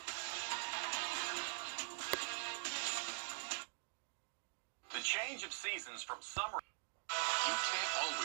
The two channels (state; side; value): silent; left; digital silence